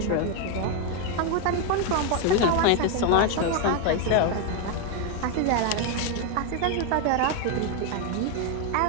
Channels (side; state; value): both; different; correlation 0.01